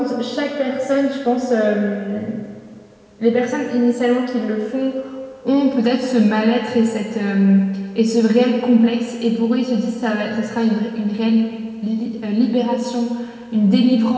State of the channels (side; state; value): both; identical; correlation 1.00